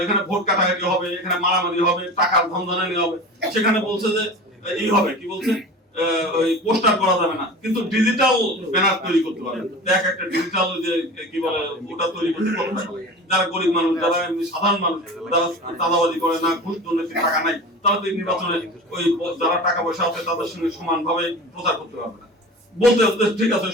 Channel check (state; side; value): normal; both; correlation 0.34